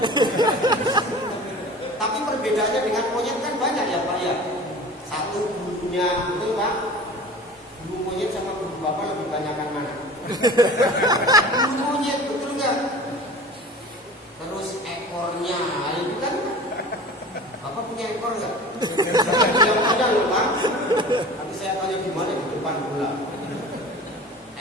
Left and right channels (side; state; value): both; normal; correlation 0.39